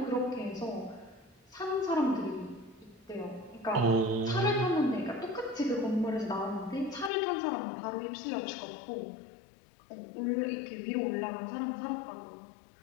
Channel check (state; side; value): drops out; right; at 7.1 s